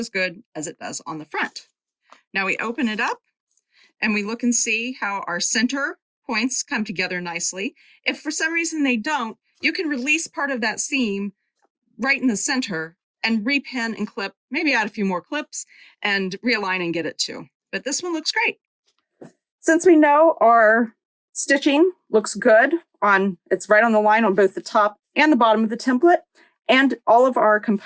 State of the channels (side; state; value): both; identical; correlation 1.00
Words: good as it does on the front. Now we open it up and we look and see how our center points come together nicely. If for some reason they don't, you can release part of that seam right in the center and repin and clip, maybe add a few more clips and realign and get it too. But this one looks great. Since we know our stitching looks good it's right on the line on both the top and the bottom of the template, and all of our